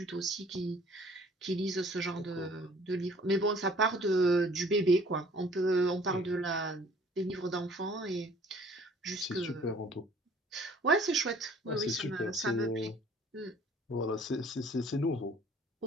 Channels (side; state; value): both; normal; correlation 0.54